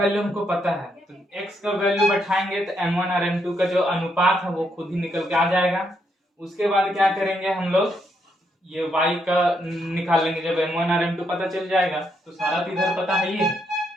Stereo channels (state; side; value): normal; both; correlation 0.77